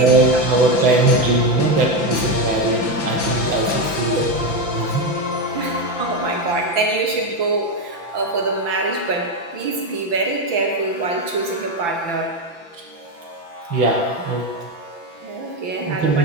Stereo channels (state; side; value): late; left; 5.9 ms